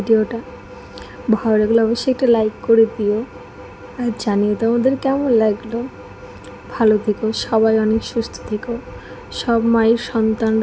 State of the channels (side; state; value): both; identical; correlation 1.00